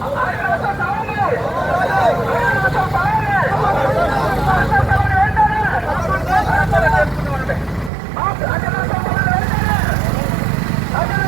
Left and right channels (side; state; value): left; drops out; at 7.9 s